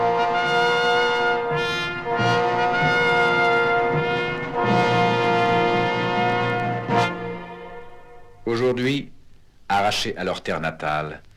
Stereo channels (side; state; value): both; identical; correlation 1.00